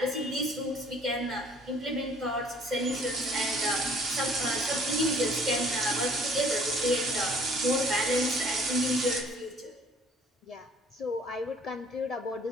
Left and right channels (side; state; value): both; normal; correlation 0.56